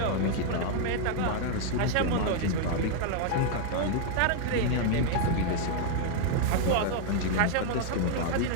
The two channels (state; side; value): different; both; correlation 0.00